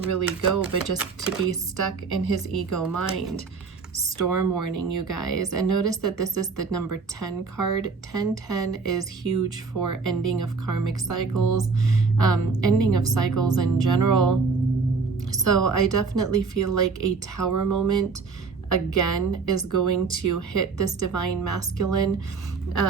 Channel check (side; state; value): left; quieter; 4.8 dB